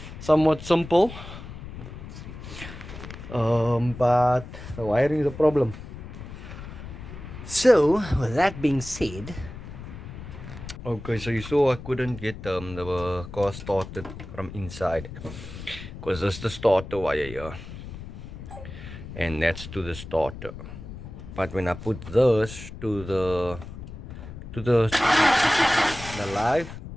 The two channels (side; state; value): left; noise; rumble, 12 dB below the sound